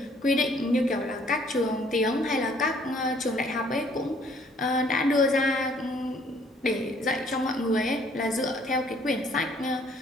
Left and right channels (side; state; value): both; normal; correlation 0.61